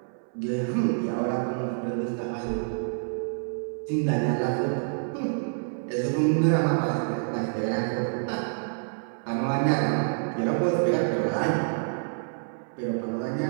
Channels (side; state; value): left; silent; 60 dB below the other